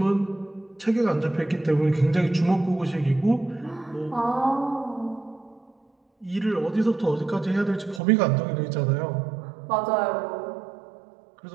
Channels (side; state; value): left; drops out; at 8.0 s